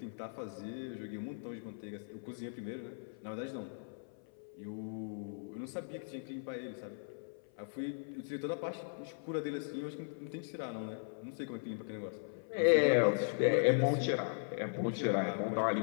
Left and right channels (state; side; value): silent; right; 52 dB below the other